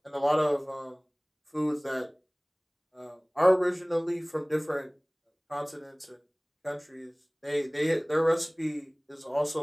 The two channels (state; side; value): identical; both; correlation 1.00